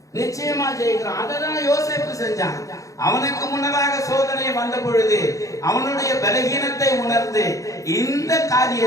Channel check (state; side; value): late; right; 0.16 ms